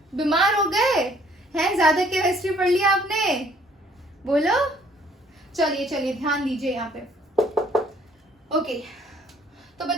बीमार हो गए हैं? ज्यादा केमिस्ट्री पढ़ लिया आपने? बोलो. चलिए चलिए, ध्यान दीजिए यहाँ पे. ओके, तो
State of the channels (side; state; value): both; normal; correlation 0.60